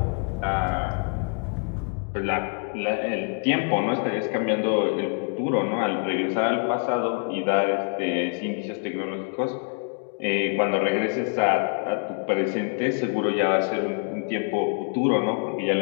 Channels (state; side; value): quieter; right; 38.3 dB